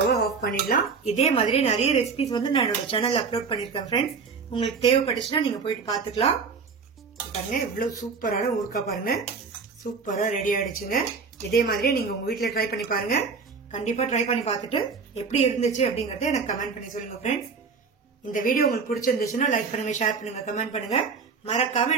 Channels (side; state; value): left; quieter; 5.2 dB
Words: ஆஃப் பண்ணிடலாம். இதே மாதிரி நிறைய ரெசிபிஸ் வந்து நான் என்னோட சேனல்ல அப்லோட் பண்ணிருக்கேன் ஃப்ரெண்ட்ஸ். உங்களுக்கு தேவைப்பட்டுச்சுன்னா நீங்க போயிட்டு பாத்துக்கலாம். பாருங்க இவ்வளவு சூப்பரான ஊறுகாய் பாருங்க, சூப்பரா ரெடி ஆயிடுச்சுங்க. இதே மாதிரியே நீங்க உங்க வீட்டுல ட்ரை பண்ணி பாருங்க. கண்டிப்பா ட்ரை பண்ணி பார்த்துட்டு எப்படி இருந்துச்சு அப்படிங்கறத எனக்கு கமெண்ட் பண்ணி சொல்லுங்க ஃப்ரெண்ட்ஸ். இந்த வீடியோ உங்களுக்கு பிடிச்சிருந்துச்சுன்னா லைக் பண்ணுங்க, ஷேர் பண்ணுங்க, கமெண்ட் பண்ணுங்க. மறக்காம